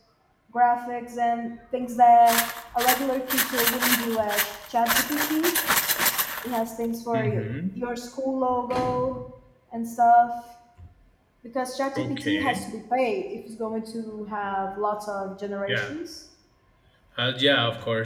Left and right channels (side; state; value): both; identical; correlation 1.00